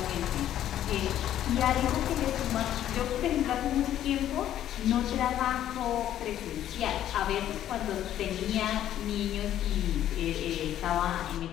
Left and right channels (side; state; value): right; quieter; 11.6 dB